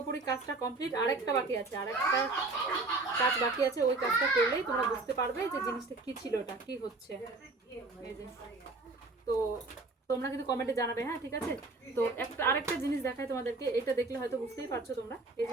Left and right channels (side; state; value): left; quieter; 3.4 dB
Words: কাজটা কমপ্লিট, আরেকটা বাকি আছে, আরেকটা কাজ বাকি আছে। ওই কাজটা করলেই তোমরা বুঝতে পারবে যে জিনিসটা কি ছিল, ওটা কি হচ্ছে। এই যে, তো তোমরা কিন্তু কমেন্টে জানাবে। হ্যাঁ, ঠিক আছে। তো আরেকটা জিনিস দেখাই তোমাদেরকে, এটা দেখলে হয়তো বুঝতেই পারছো তোমরা। এই